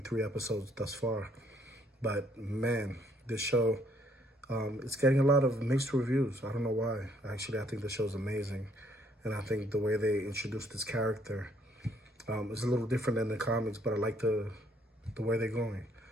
episodes thus far. But man, this show, it's getting a lot of mixed reviews. I don't know why. Actually, I think the show's amazing. And I think the way they introduced this character is a little different than the comics, but I like the way they're going.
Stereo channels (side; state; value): both; normal; correlation 0.66